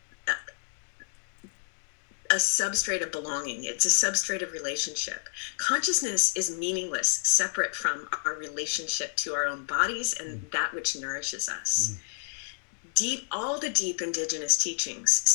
a substrate of belonging. It's a substrate of relationship. Consciousness is meaningless, separate from our relationship to our own bodies and that which nourishes us. All the deep indigenous teachings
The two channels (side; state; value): right; silent; digital silence